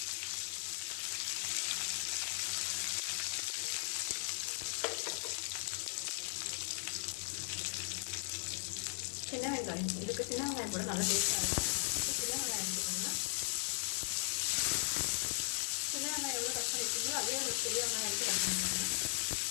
சின்ன வெங்காயம். இதுக்கு சின்ன வெங்காயம் கூட நல்லா டேஸ்ட்டாக இருக்கும். சின்ன வெங்காயம் எடுத்துக்கோங்க. சின்ன வெங்காயம் எவ்வளோ கட் பண்ணிக்கோங்க அதே ஒரு பெரிய வெங்காயம் எடுத்து கட் பண்ணிக்கோங்க.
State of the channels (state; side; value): silent; right; digital silence